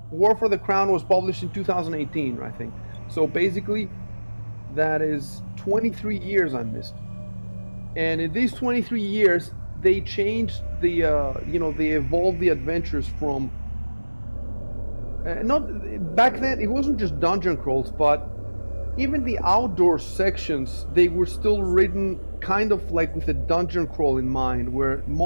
War for the Crown was published in 2018, I think. So basically, that is 23 years I missed. And in these 23 years, they changed they evolved the adventures from, not back then, it wasn't just dungeon crawls, but even the outdoor sections, they were still written kind of like with a dungeon crawl in mind, where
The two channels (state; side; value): inverted; both; correlation -1.00